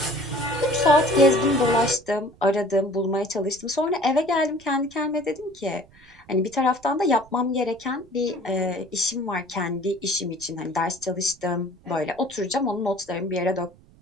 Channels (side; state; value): right; noise; rumble, 26 dB below the sound